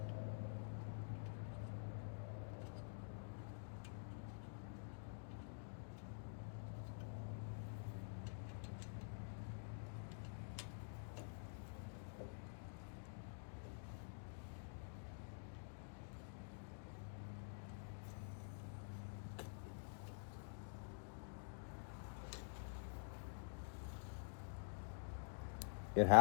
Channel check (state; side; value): silent; right; digital silence